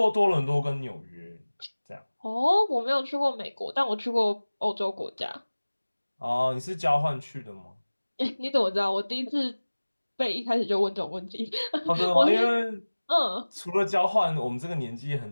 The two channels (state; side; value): inverted; both; correlation -1.00